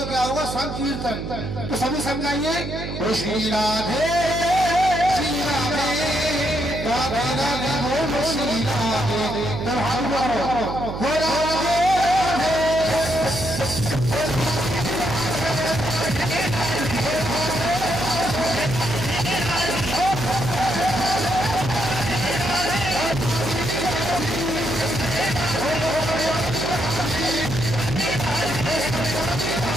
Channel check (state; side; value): noise; right; hum, 6 dB below the sound